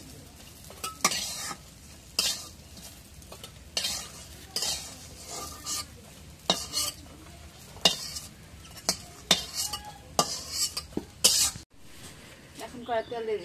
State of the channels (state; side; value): identical; both; correlation 1.00